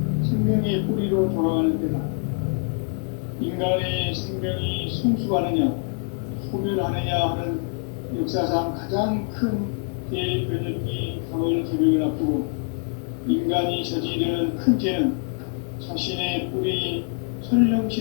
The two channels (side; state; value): right; quieter; 37.2 dB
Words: 생명의 뿌리로 돌아가는 때다. 인간의 생명이 성숙하느냐 소멸하느냐 하는 역사상 가장 큰 대변혁기인 가을 개벽을 앞두고 인간이 저지르는 큰 죄는 자신의 뿌리인